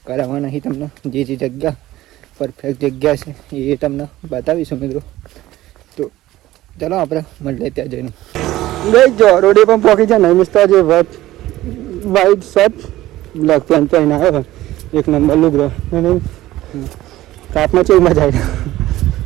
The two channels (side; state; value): left; quieter; 15.8 dB